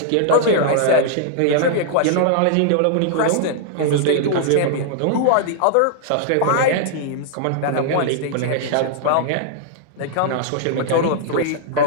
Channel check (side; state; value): both; different; correlation -0.01